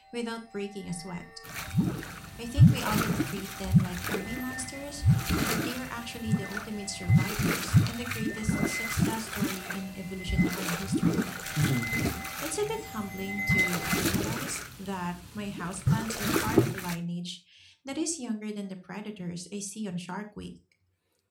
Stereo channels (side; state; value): both; identical; correlation 1.00